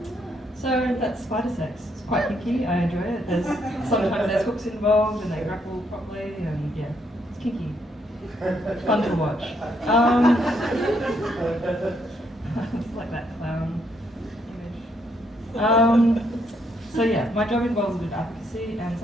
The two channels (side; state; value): both; normal; correlation 0.73